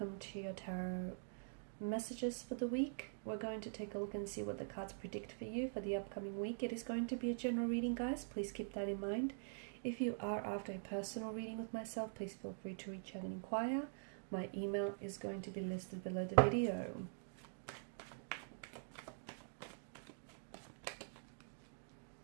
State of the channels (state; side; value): silent; left; digital silence